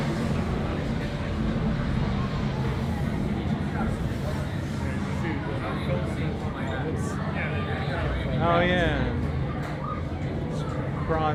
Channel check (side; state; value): both; identical; correlation 1.00